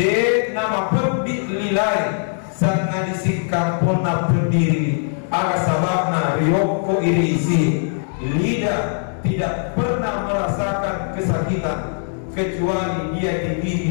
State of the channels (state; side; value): silent; right; digital silence